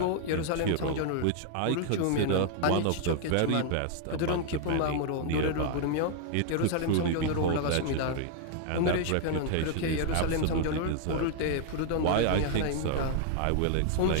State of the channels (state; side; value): different; both; correlation 0.00